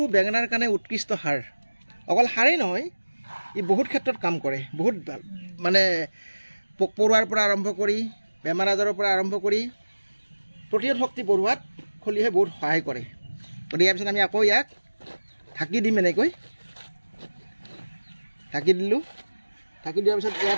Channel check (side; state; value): both; inverted; correlation -1.00